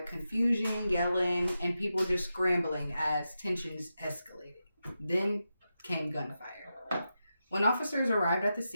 confusion, yelling, and people just scrambling as tensions escalated. Then came gunfire. When officers arrived at the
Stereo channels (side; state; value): both; inverted; correlation -0.89